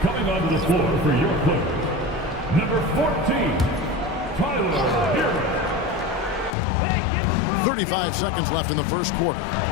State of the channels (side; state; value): right; drops out; at 6.6 s